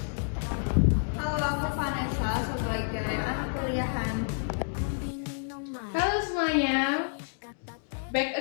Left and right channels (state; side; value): silent; right; digital silence